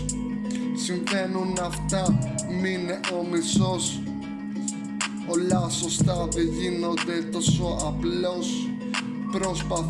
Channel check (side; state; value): both; identical; correlation 1.00